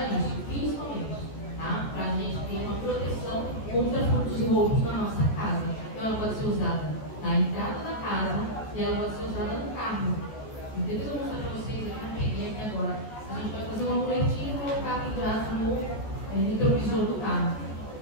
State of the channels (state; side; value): late; right; 14 ms